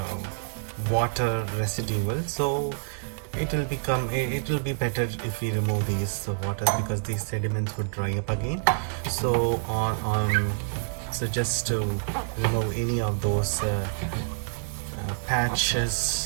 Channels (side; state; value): left; silent; digital silence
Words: water residual. So it will be better if we remove these water, because these sediments would dry up again. So so just to remove any of those